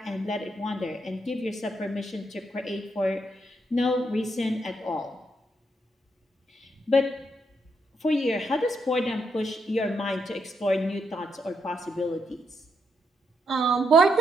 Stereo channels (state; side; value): normal; both; correlation 0.78